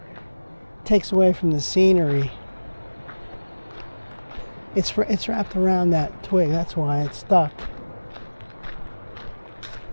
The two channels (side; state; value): both; inverted; correlation -1.00